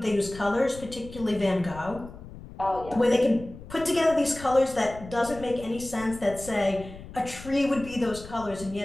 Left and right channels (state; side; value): noise; left; rumble, 15 dB below the sound